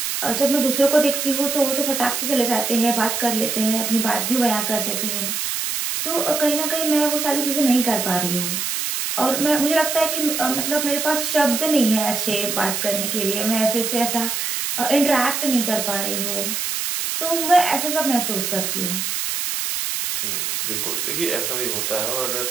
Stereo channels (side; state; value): right; noise; hiss, 1 dB below the sound